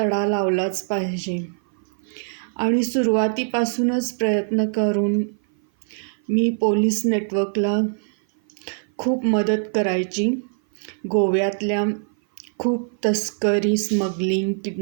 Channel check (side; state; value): left; silent; 57 dB below the other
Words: लावलाच पाहिजे. आणि सुरुवातीपासूनच प्रयत्न करून मी पोलीस नेटवर्कला खूप मदत करायची. गोव्यातल्या खूप तस्करी, स्मगलिंग,